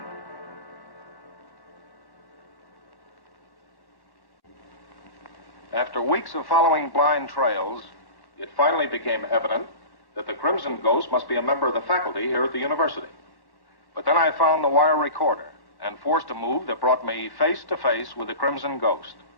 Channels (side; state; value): right; late; 1.1 ms